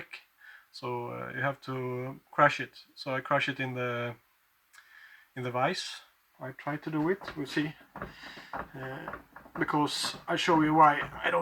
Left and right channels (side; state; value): both; identical; correlation 1.00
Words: so you have to crush it. So I crush it in the vise. I try to do it, we'll see, because I show you why I